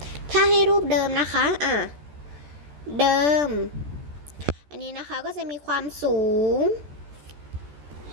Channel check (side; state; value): left; late; 14 ms